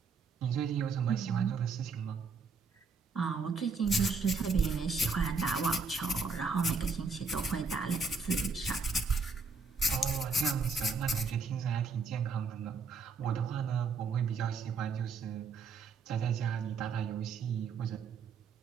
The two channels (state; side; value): quieter; left; 4.6 dB